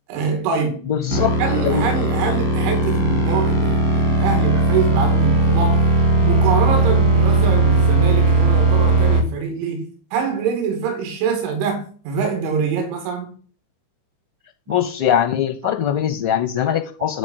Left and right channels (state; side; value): late; left; 15 ms